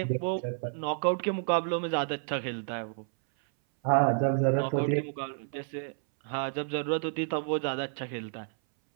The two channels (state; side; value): silent; left; 58 dB below the other